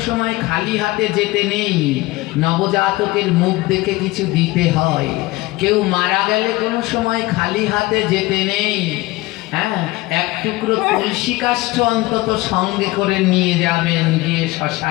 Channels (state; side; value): quieter; right; 19.9 dB